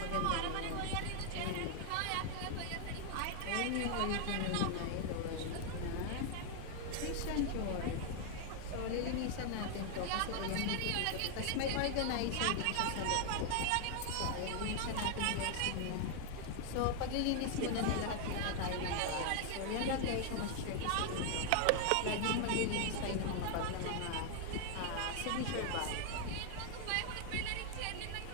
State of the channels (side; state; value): both; different; correlation 0.00